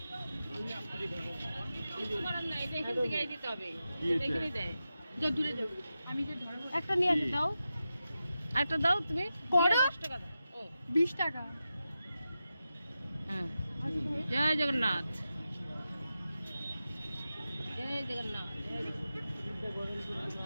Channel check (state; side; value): inverted; both; correlation -0.91